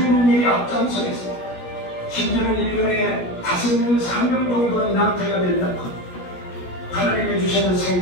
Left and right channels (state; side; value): late; right; 17 ms